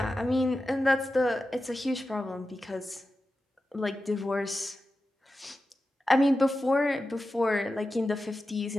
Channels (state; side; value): normal; both; correlation 0.92